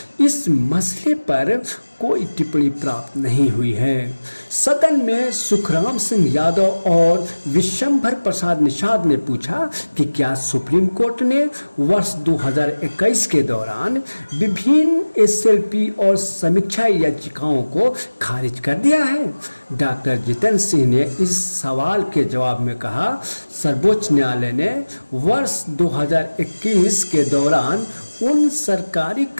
इस मसले पर कोई टिप्पणी प्राप्त नहीं हुई है। सदन में सुखराम सिंह यादव और विशंभर प्रसाद निषाद ने पूछा कि क्या सुप्रीम कोर्ट ने वर्ष 2021 के दौरान विभिन्न एसएलपी और समीक्षा याचिकाओं को खारिज कर दिया है। डॉक्टर जितेंद्र सिंह ने इस सवाल के जवाब में कहा, सर्वोच्च न्यायालय ने वर्ष 2021 के दौरान उन सरकारी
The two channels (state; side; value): inverted; both; correlation -1.00